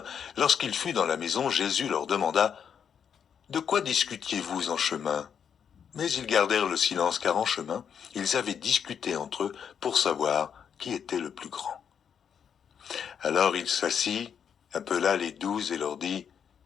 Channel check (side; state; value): right; quieter; 7.7 dB